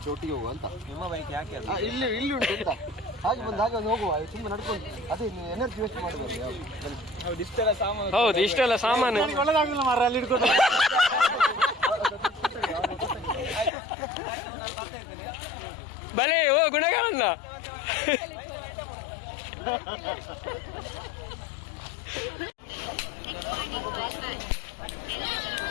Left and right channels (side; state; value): right; drops out; at 13.7 s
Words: ಒಟ್ಟಿಗೆ ಹೋಗು ಅಂತ. ನಿಮ್ಮ ಬೈಕ್ ಯಾಕೆ ಅದು? ಇಲ್ಲಿ ಉಂಟು ಅಂತ ಹಾಗೆ ಬಂದು ಹಾಗೆ ಒಂದು ಹೋಗುವ, ತುಂಬ ನಡ್ಕೊಂಡು. ಅದೇ ಎನರ್ಜಿ ವೇಸ್ಟ್ ಮಾಡಬಾರ್ದು. ಹೌದು, ಇಷ್ಟೆಲ್ಲ ಸಾಮಾನು ಒಳ್ಳೆದಾಗಿಲ್ಲ ಮಾರ, ಅಲ್ಲಿ ಇಟ್ಕೊಂಡು. ಆಯ್ತು, ನಾನು ಬರ್ತಾ ಇದ್ದೇನೆ. ಬಲೆ ಓ ಗುಣಗಾರಣ್ಣ.